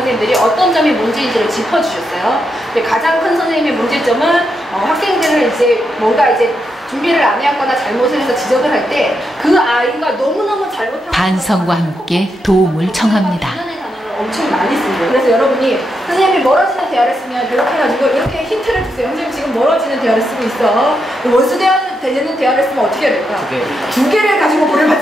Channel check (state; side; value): normal; both; correlation 0.83